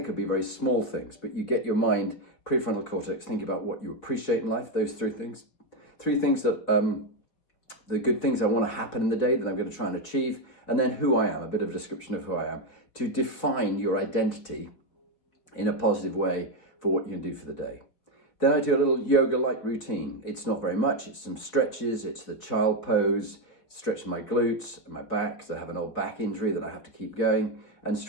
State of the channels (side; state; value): right; late; 4.6 ms